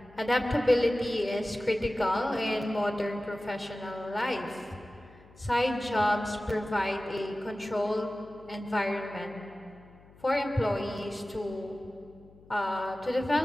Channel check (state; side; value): noise; left; hum, 24 dB below the sound